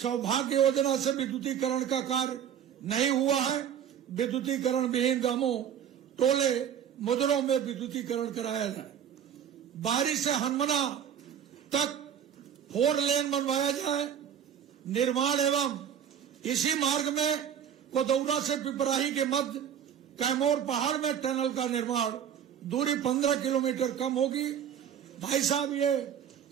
सौभाग्य योजना से विद्युतीकरण का कार्य नहीं हुआ है। विद्युतीकरण विहीन गांवों, टोले, मुजरों में विद्युतीकरण कराया जाए। बारी से हनुमना तक 4 लेन बनवाया जाए। निर्माण एवं इसी मार्ग में कोदौरा से पिपराही के मध्य कैमोर पहाड़ में टनल का निर्माण, दूरी 15 किलोमीटर कम होगी। भाई साहब, ये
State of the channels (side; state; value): left; quieter; 9.0 dB